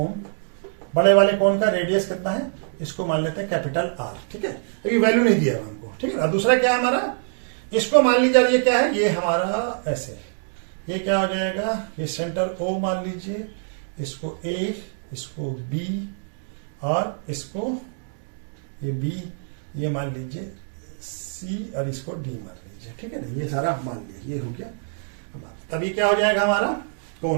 बड़े वाले कोन का रेडियस कितना है, इसको मान लेते हैं कैपिटल आर, ठीक है। अभी वैल्यू नहीं दिया हमको, ठीक है। और दूसरा क्या है हमारा, इसको मान लीजिए, ये क्या है, ये हमारा ऐसे, ये क्या हो जाएगा, ये सेंटर ओ मान लीजिए, इसको ए, इसको बी, और इसको ये बी, ये मान लीजिए सी, और इसको डी मान लीजिए, ठीक है ना। ये सारा मान लिया, ये हो गया। तभी क्या हो जाएगा हमारा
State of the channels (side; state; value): left; silent; digital silence